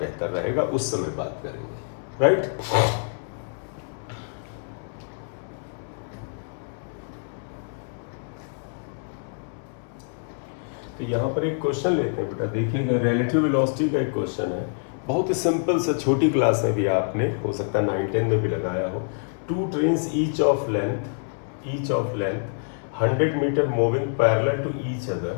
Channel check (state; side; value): silent; right; digital silence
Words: बेहतर रहेगा, उस समय बात करेंगे, राइट। तो यहाँ पर एक क्वेश्चन लेते हैं बेटा, देखिएगा रिलेटिव वेलोसिटी का एक क्वेश्चन है, बहुत ही सिंपल सा, छोटी क्लास में भी आपने हो सकता है 9-10 में भी लगाया हो। 2 trains each of length 100 metre moving parallel to each other